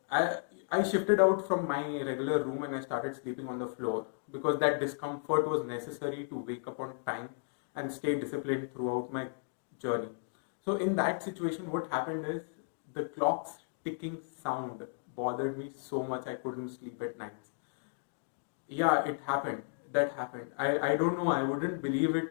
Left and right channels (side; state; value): right; silent; digital silence